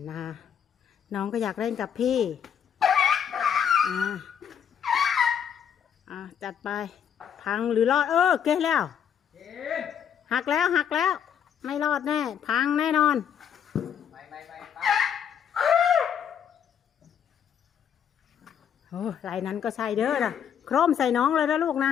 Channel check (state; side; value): quieter; right; 8.4 dB